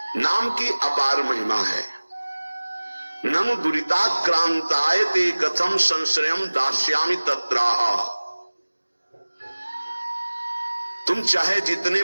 नाम की अपार महिमा है। ननु दुरिताक्रांतायते कथम संश्रयम दास्यामि तत्राह। तुम चाहे जितने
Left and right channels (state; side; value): inverted; both; correlation -1.00